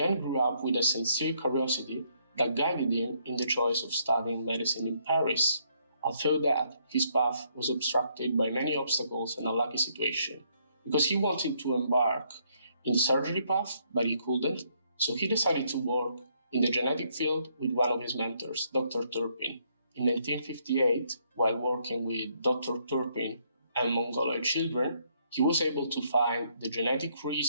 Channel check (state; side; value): inverted; both; correlation -0.71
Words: grew up with a sincere curiosity that guided him in the choice of studying medicine in Paris, although that his path was obstructed by many obstacles and a lucky situation, because he wanted to embark in the surgery path, but he couldn't, so he decided to work in the genetic field with one of his mentors, Dr. Turpin. In 1958, while working with Dr. Turpin and Mongoloid children, he was able to find the genetic